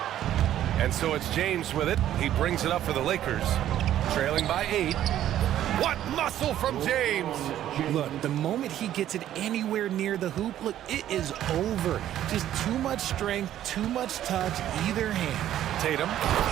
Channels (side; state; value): left; quieter; 11.9 dB